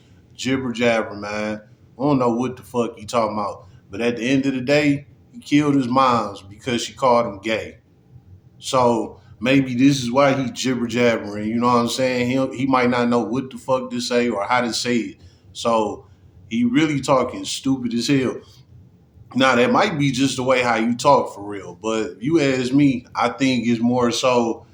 jibber jabber, man. I don't know what the fuck he talking about. But at the end of the day, he killed his moms because she called him gay. So maybe this is why he jibber jabbering. You know what I'm saying? He might not know what the fuck to say or how to say it. So he really talking stupid as hell. Now that might be just the way how you talk for real, but if you ask me, I think it's more so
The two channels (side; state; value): both; identical; correlation 1.00